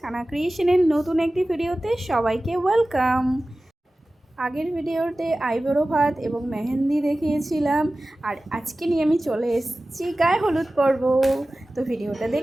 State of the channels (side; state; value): both; normal; correlation 0.96